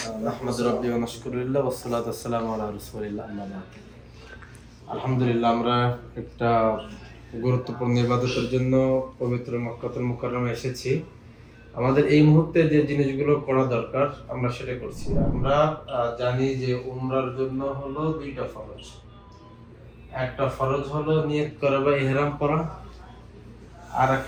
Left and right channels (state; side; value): identical; both; correlation 1.00